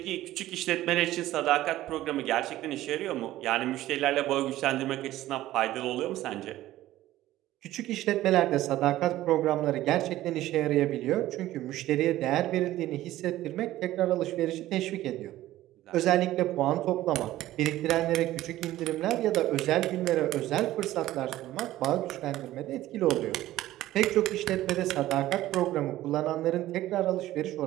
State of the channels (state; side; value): quieter; left; 15.0 dB